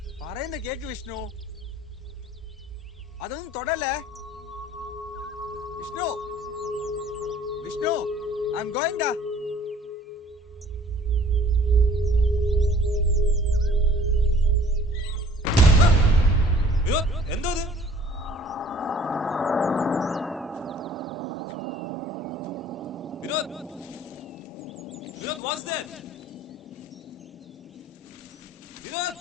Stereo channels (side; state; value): both; normal; correlation 0.54